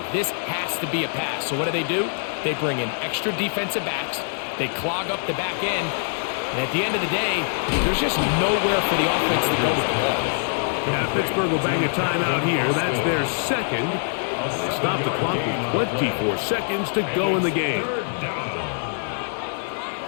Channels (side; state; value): right; silent; digital silence